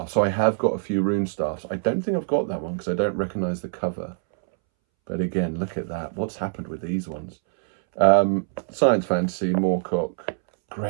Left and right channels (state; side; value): silent; left; 62 dB below the other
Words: So I have got a few Rune Staffs. I don't think I've got that one because I don't recognise the cover. But again, look at that. What's happened with these ones? Science fantasy, Moorcock.